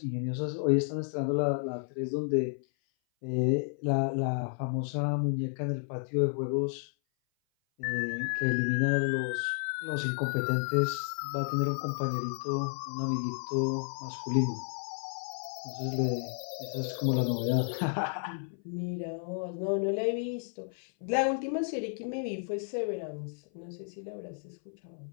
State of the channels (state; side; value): silent; right; 56 dB below the other